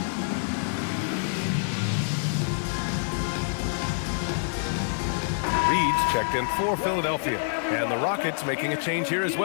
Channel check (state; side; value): silent; right; digital silence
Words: checked in for Philadelphia. And the Rockets making a change here as